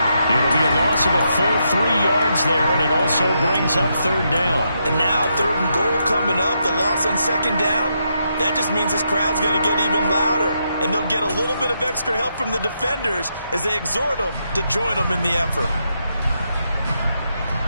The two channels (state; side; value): inverted; both; correlation -0.80